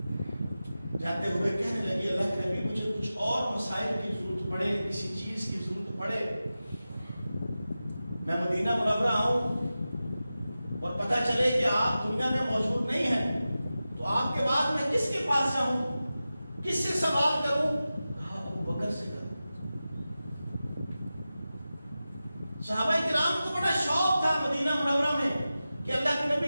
جاتے ہوئے کہنے لگی اللہ کے نبی مجھے کچھ اور مسائل کی ضرورت پڑے، کسی چیز کی ضرورت پڑے، میں مدینہ منورہ آؤں اور پتہ چلے کہ آپ دنیا میں موجود نہیں ہیں تو آپ کے بعد میں کس کے پاس جاؤں، کس سے سوال کروں؟ کہا ابو بکر سے کروں۔ صحابہ کرام کو بڑا شوق تھا مدینہ منورہ میں کہ اللہ کے نبی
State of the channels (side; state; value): both; inverted; correlation -0.94